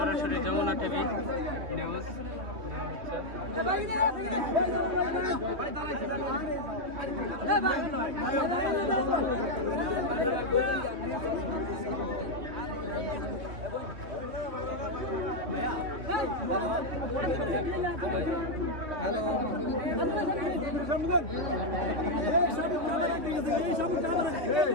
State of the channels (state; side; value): late; left; 2.9 ms